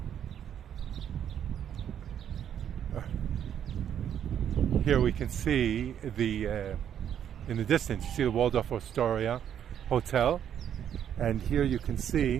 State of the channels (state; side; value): quieter; left; 9.4 dB